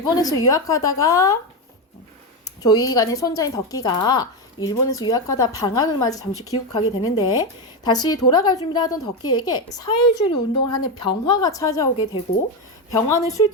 유학하다가 조이간의 손자인 덕기가 일본에서 유학하다 방학을 맞아 잠시 귀국하게 되는데 다시 돌아갈 준비를 하던 덕기에게 사회주의 운동을 하는 병화가 찾아오게 되고 병화는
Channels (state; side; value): normal; both; correlation 0.11